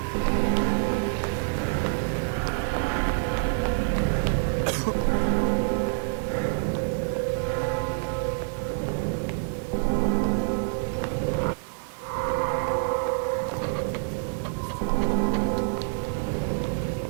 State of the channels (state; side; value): silent; left; digital silence